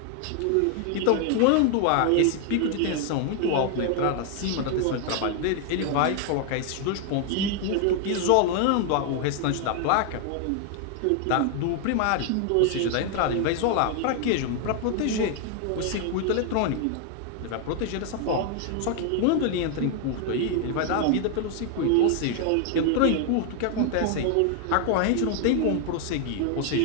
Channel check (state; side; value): different; both; correlation 0.00